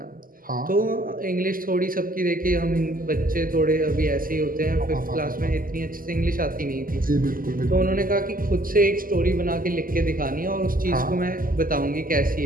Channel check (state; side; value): late; left; 0.41 ms